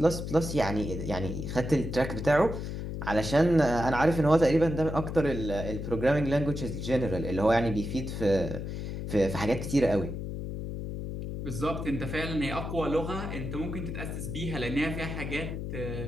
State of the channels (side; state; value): left; noise; hum, 5 dB below the sound